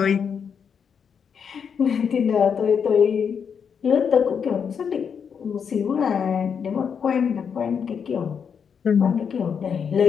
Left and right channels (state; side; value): quieter; right; 6.9 dB